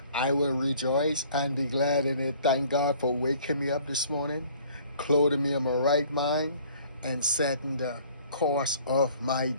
I will rejoice and be glad in it. Thank God for waking me up this morning, clothing me in my right mind, and setting the course of my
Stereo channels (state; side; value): inverted; both; correlation -0.55